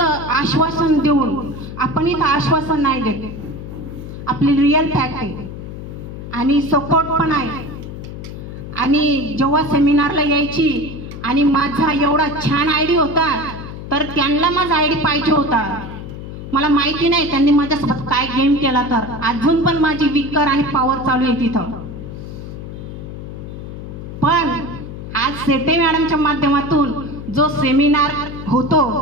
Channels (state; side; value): noise; left; hum, 10 dB below the sound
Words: आश्वासन देऊन. आपण इथं आश्वासन नाही देत, आपली रिअल फॅक्ट आहे आणि सपोर्ट पण आहे. आणि जेव्हा सेमिनारला यायची आणि माझा एवढा छान आयडी होता, तर त्यांना माझा आयडी पाहिजे होता. मला माहिती नाही त्यांनी माझ्यासोबत काय गेम केला, तर अजून पण माझी विकर आणि पॉवर चालू आहे तिथं. पण आज सेटे मॅडमच्या माध्यमातून जो सेमिनार होतो,